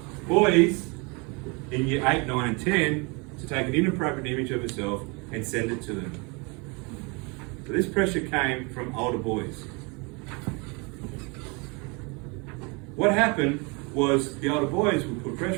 boys in year 8, 9 and 10 to take an inappropriate image of herself and send it to them. So this pressure came from older boys. What happened was the older boys would put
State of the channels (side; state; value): left; quieter; 30.2 dB